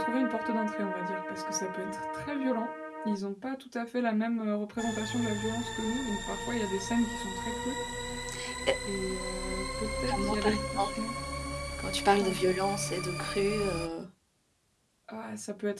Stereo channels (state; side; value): identical; both; correlation 1.00